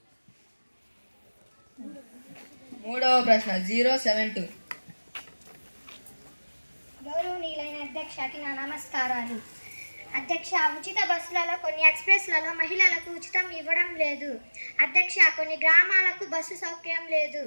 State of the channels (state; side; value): inverted; both; correlation -1.00